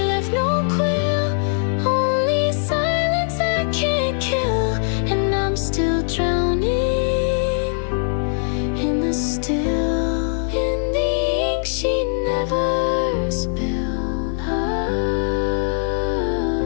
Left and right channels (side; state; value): right; silent; 65 dB below the other